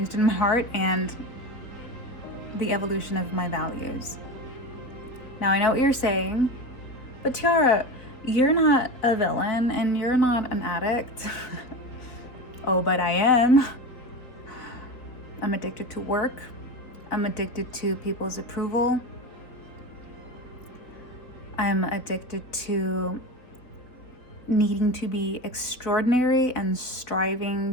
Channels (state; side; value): late; right; 3.7 ms